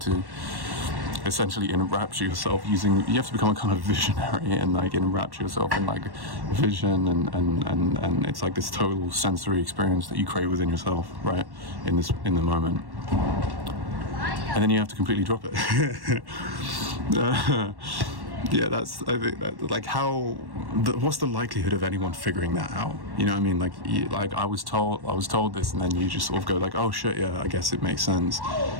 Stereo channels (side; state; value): left; late; 1.1 ms